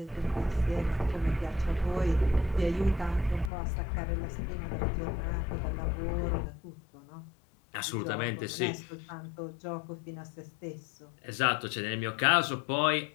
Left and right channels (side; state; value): right; drops out; at 3.5 s